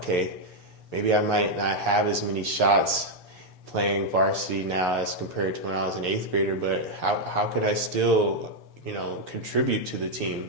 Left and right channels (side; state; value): right; late; 6.8 ms